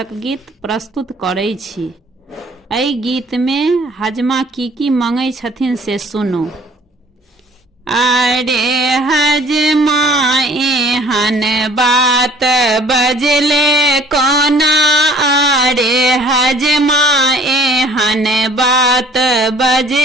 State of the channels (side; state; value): both; normal; correlation 0.55